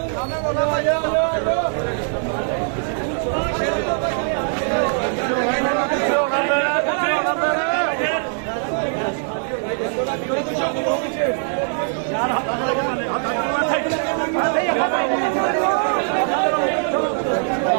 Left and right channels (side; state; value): left; silent; 65 dB below the other